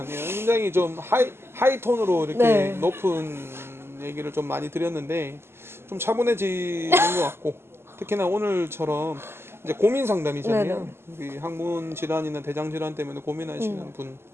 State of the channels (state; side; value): late; left; 0.12 ms